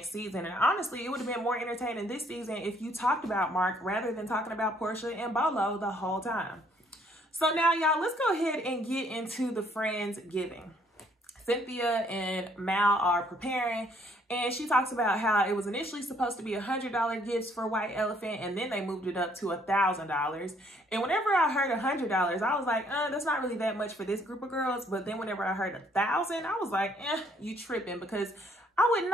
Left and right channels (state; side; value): normal; both; correlation 0.65